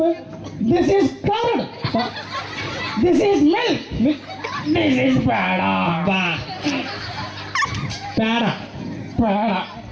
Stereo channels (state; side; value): identical; both; correlation 1.00